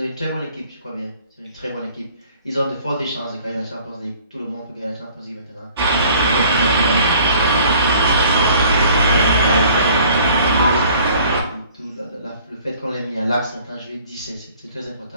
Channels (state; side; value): inverted; both; correlation -0.54